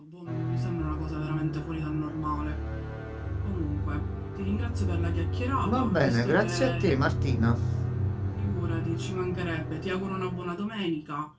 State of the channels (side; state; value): both; identical; correlation 1.00